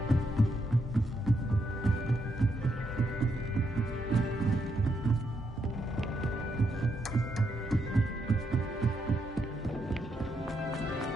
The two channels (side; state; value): both; normal; correlation 0.79